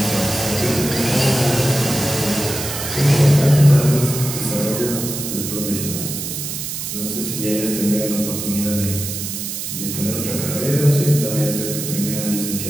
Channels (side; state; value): right; noise; hiss, 5 dB below the sound